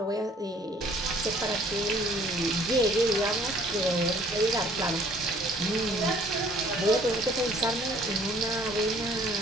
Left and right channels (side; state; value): both; normal; correlation 0.57